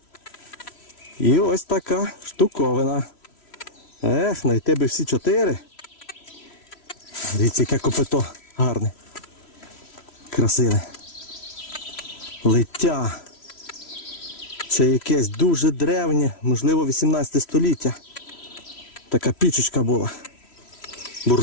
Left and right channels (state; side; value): late; right; 3.1 ms